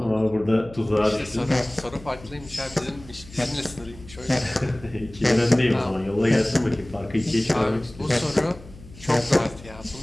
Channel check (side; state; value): left; noise; hum, 19 dB below the sound